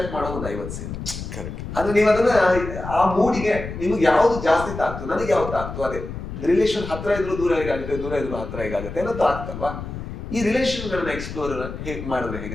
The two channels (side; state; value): left; noise; rumble, 8 dB below the sound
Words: ಮಾಡೋ ಒಂದು 50 ಸೀನ್. ಅಂದ್ರೆ ನೀವು ಅದನ್ನ ಆ ಮೂಡಿಗೆ ನಿಮ್ಗೆ ಯಾವ್ದು ಜಾಸ್ತಿ ತಾಕ್ತು, ನನಗೆ ಯಾವ್ದು ತಾಕ್ತು, ಅದೇ ರಿಲೇಷನ್ ಹತ್ರ ಇದ್ರು ದೂರ ಹೇಗಾಗುತ್ತೆ, ದೂರ ಇದ್ರು ಹತ್ರ ಹೇಗಾಗುತ್ತೆ ಅನ್ನೋದು ಆಗ್ತಲ್ವಾ. ಈ ರಿಲೇಷನ್ಗಳನ್ನ ಎಕ್ಸ್ಪ್ಲೋರ್ ಹೇಗೆ ಮಾಡಿದ್ರೆ